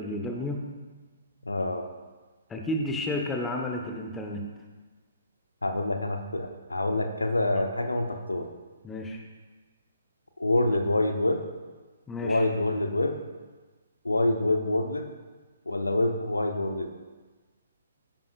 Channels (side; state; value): both; inverted; correlation -0.77